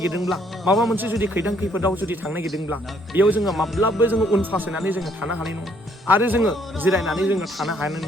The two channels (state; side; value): normal; both; correlation 0.67